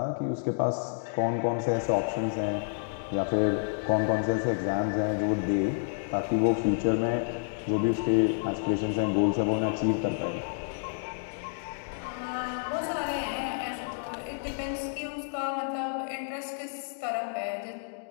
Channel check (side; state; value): right; silent; digital silence